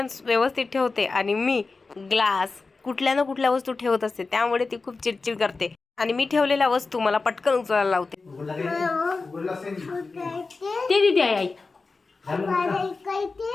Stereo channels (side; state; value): right; quieter; 4.0 dB